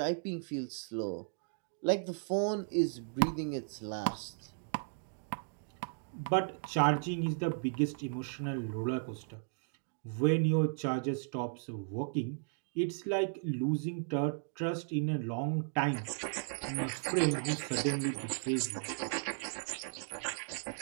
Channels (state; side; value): silent; left; digital silence